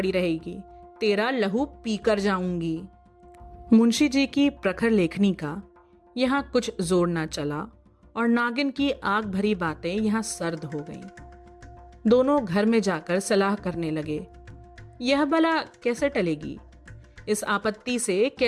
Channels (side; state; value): both; identical; correlation 1.00